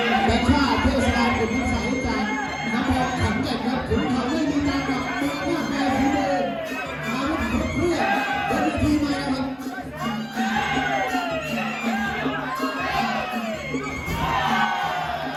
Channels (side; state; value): both; identical; correlation 1.00